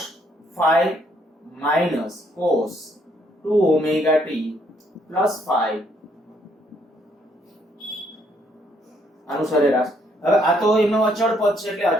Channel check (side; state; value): both; normal; correlation 0.70